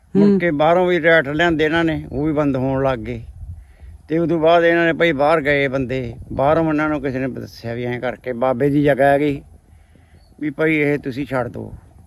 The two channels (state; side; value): identical; both; correlation 1.00